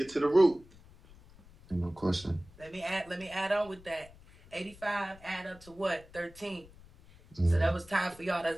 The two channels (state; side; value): noise; left; rumble, 23 dB below the sound